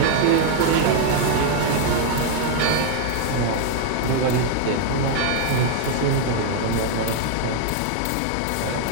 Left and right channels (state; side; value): different; both; correlation 0.00